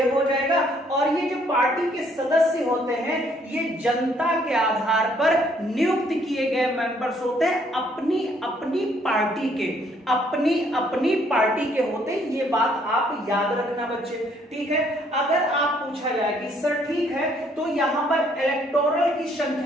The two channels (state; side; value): normal; both; correlation 0.66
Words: हो जाएगा। और ये जो पार्टी के सदस्य होते हैं ये जनता के आधार पर नियुक्त किए गए मेंबर्स होते हैं, अपनी अपनी पार्टी के होते हैं। ये बात आप याद रखना बच्चे, ठीक है। अगर आप पूछा जाए कि सर ठीक है तो यहां पर इलेक्टोरल की